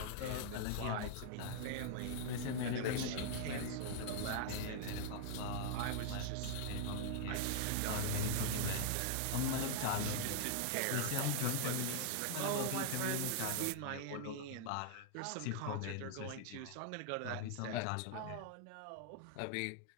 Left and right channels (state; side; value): different; both; correlation -0.01